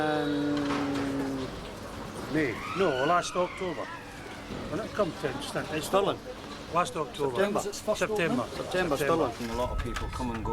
May. No, last October. When it come to it's Stirling. Last October. September. September, Stirling. And a lot of people come and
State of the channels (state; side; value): identical; both; correlation 1.00